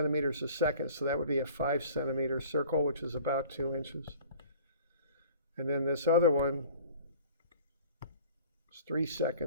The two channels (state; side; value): inverted; both; correlation -0.47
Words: a second, so that would be a 5 centimeter circle, which is about 2 inches. And then this other one is 3